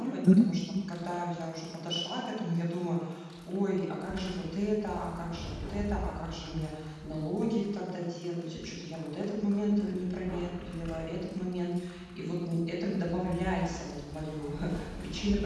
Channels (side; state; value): both; identical; correlation 1.00